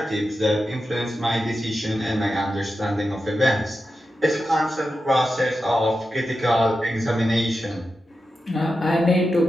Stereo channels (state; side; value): normal; both; correlation 0.90